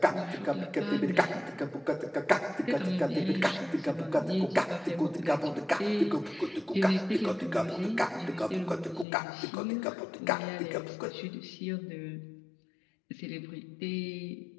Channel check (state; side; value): drops out; right; at 9.1 s